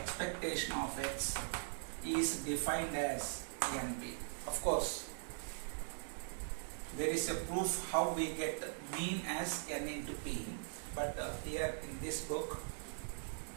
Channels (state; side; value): silent; left; digital silence